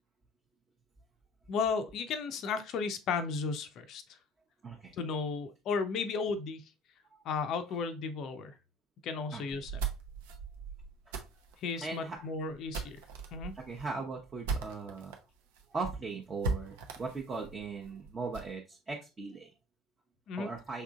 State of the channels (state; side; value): normal; both; correlation 0.46